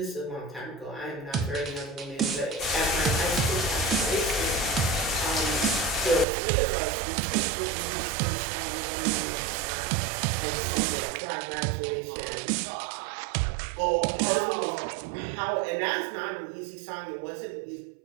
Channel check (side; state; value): left; drops out; at 6.2 s